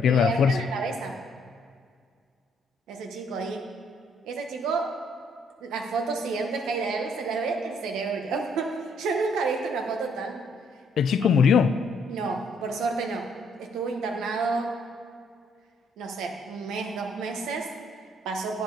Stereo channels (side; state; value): both; normal; correlation 0.68